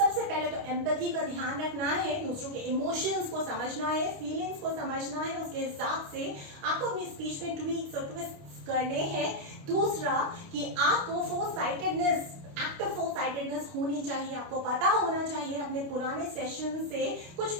पहले तो एम्पैथी का ध्यान रखना है, दूसरों के इमोशंस को समझना है, फीलिंग्स को समझना है, उसके हिसाब से आपको अपनी स्पीच में ट्वीक्स और ट्विस्ट करने हैं। दूसरा कि आपको फोरसाइटेडनेस, एक्टिव फोरसाइटेडनेस होनी चाहिए, आपको पता होना चाहिए अपने पुराने सेशन से कुछ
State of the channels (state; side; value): late; left; 29 ms